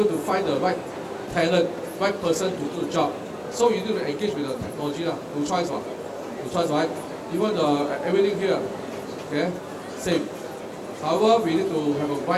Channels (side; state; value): both; identical; correlation 1.00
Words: to find the right talent, right person to do the job. So you need to engage with the technology, no choice, no choice, right? Even everything here, okay, same. However, we need to have a